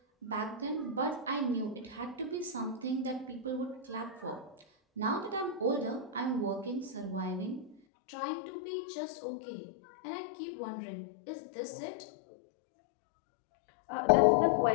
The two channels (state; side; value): drops out; right; at 7.8 s